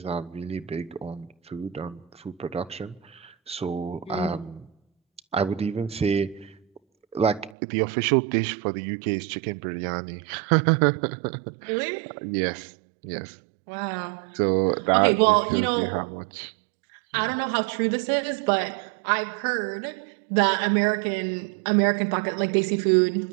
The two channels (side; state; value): left; drops out; at 7.6 s